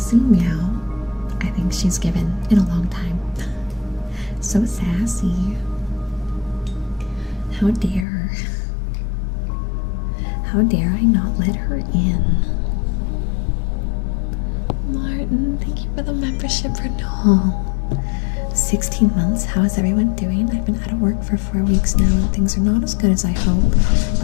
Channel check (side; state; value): right; drops out; at 8.1 s